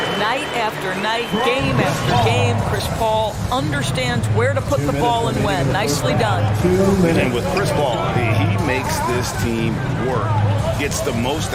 Night after night, game after game, Chris Paul understands where to put the ball and when. Nicely done. And with Chris Paul, he makes this team work. gets the most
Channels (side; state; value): both; identical; correlation 1.00